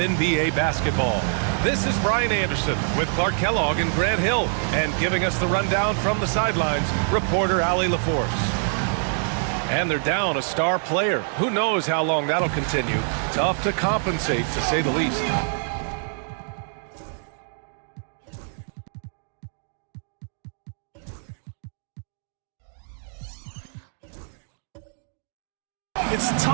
basketball. This is Brian Anderson with Clark Kellogg and Grant Hill, and giving us the rundown from the sidelines, reporter Allie LaForce. And they're down a star player. Who knows how long that'll continue. Tough to compensate, to say the least. It's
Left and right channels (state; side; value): silent; left; 62 dB below the other